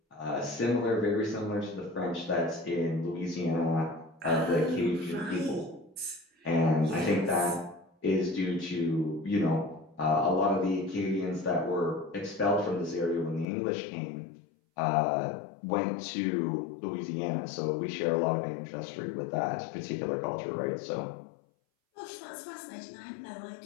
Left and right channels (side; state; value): right; drops out; at 13.5 s